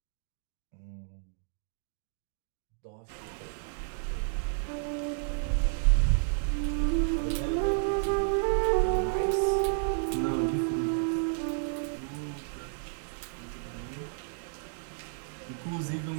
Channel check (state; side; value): silent; left; digital silence